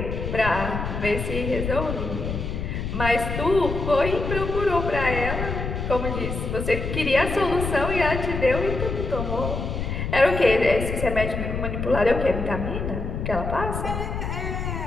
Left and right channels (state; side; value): noise; left; rumble, 4 dB below the sound